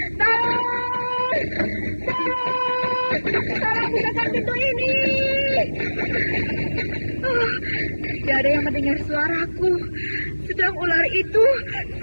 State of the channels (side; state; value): both; inverted; correlation -1.00